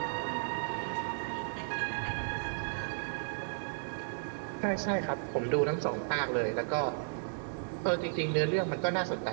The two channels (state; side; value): silent; left; digital silence